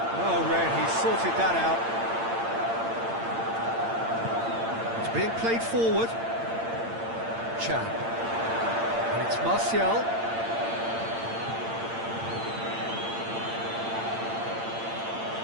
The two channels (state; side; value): late; left; 8.8 ms